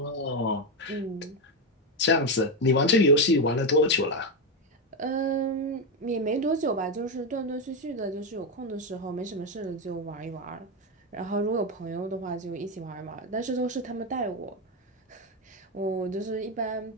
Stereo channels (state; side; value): normal; both; correlation 0.09